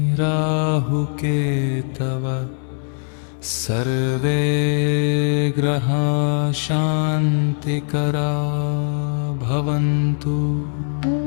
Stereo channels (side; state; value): right; silent; 61 dB below the other